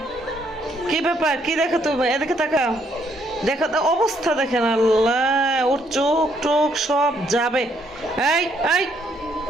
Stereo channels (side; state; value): both; normal; correlation 0.70